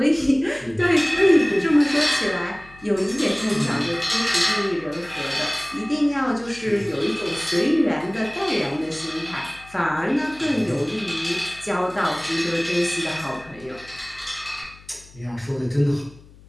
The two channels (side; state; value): left; noise; hum, 23 dB below the sound